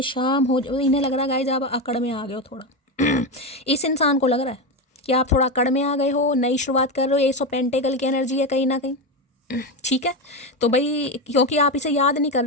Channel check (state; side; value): normal; both; correlation 0.14